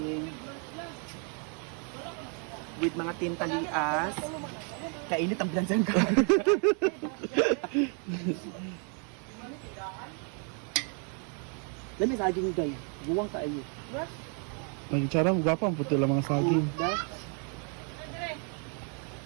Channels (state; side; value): quieter; left; 39.7 dB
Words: With mga tintalias. Kainit ang bilansan ka. Dami saging, guys. Buwang kayo. Nag-charm, gwapa ang puti lang mga saging.